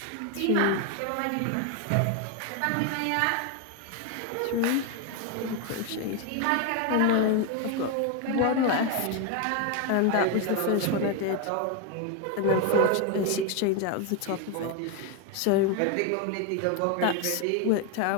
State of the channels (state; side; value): different; both; correlation 0.01